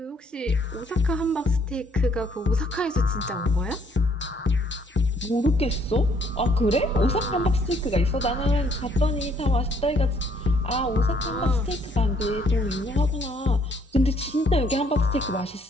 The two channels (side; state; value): both; normal; correlation 0.66